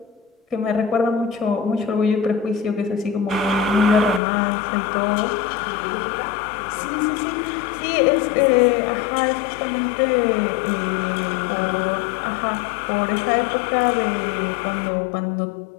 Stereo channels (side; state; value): right; drops out; at 4.2 s